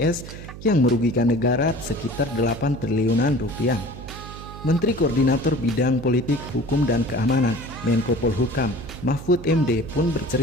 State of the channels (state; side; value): noise; right; hum, 13 dB below the sound